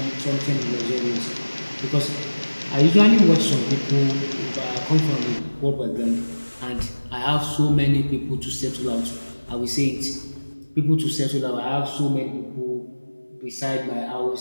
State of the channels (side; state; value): both; inverted; correlation -1.00